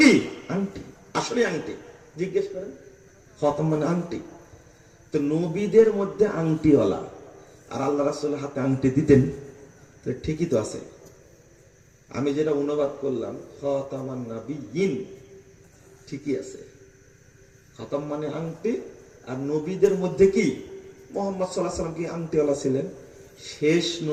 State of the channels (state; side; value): identical; both; correlation 1.00